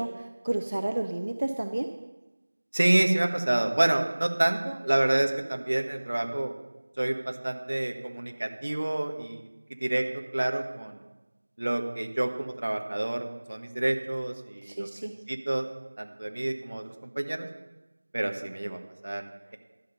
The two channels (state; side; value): inverted; both; correlation -1.00